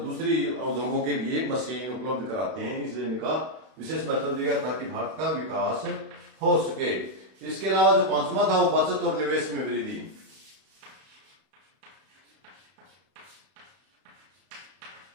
उद्योगों के लिए मशीन उपलब्ध कराते हैं, इसलिए इनका विशेष महत्व दिया ताकि भारत का विकास हो सके। इसके अलावा जो 5वां था वो बचत और निवेश में वृद्धि।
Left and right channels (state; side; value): late; left; 32 ms